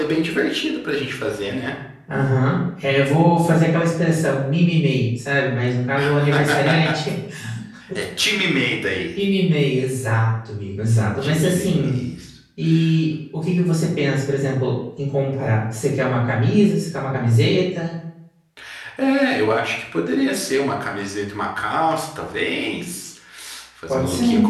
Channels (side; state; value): both; identical; correlation 1.00